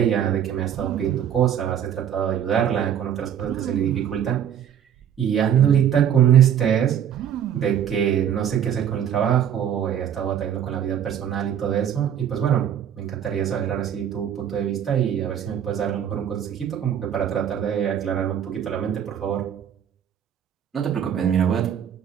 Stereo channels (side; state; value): left; quieter; 9.3 dB